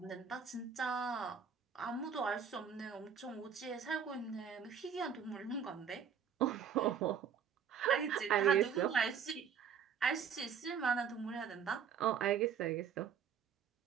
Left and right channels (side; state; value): left; quieter; 7.3 dB